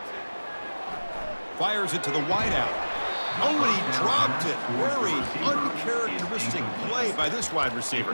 Fires it to the wideout. Oh, and he dropped it. Very uncharacteristic play by this wide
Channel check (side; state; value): both; inverted; correlation -1.00